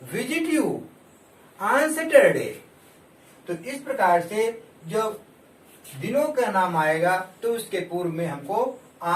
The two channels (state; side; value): identical; both; correlation 1.00